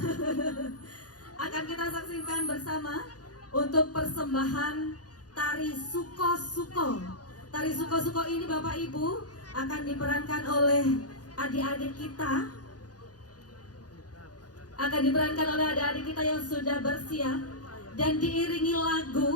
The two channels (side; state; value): right; late; 0.68 ms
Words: Akan kita saksikan bersama untuk persembahan tari Suko-Suko. Tari Suko-Suko ini Bapak Ibu akan diperankan oleh adik-adik kita. Akan diperankan oleh adik-adik kita yang sudah bersiap dan diiringi